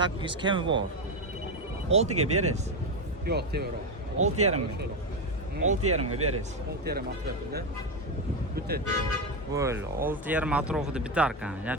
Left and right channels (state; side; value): normal; both; correlation 0.11